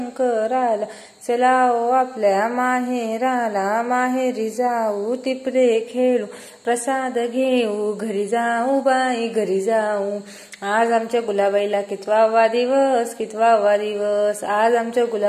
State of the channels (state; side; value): identical; both; correlation 1.00